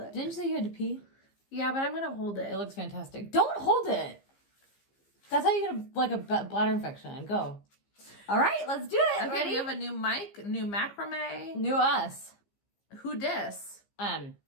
Didn't you say you had to pee? Yeah, but I'm gonna hold It it. looks fantastic. Don't hold it. That's how you get a bladder infection. Go. All right, let's do it. Okay, Ready? we have a new mic, new macrame. New us. Who dis?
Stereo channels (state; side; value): late; right; 15 ms